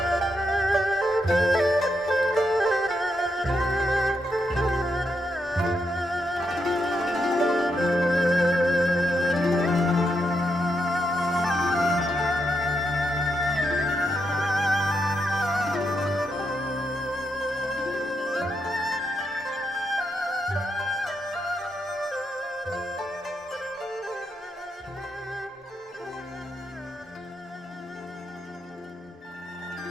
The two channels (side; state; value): both; normal; correlation 0.82